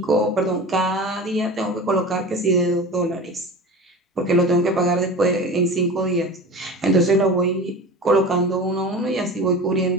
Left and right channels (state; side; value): normal; both; correlation 0.33